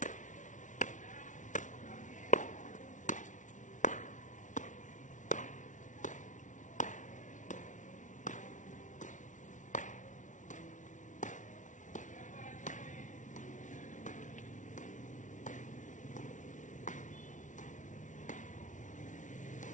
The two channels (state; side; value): late; right; 0.37 ms